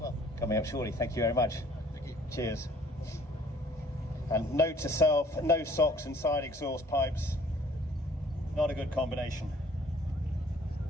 well. Coming up shortly. Thank you very much. Thank you. Cheers. And note to self, no socks and side exhaust pipes. Not a good combination.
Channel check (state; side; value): normal; both; correlation 0.56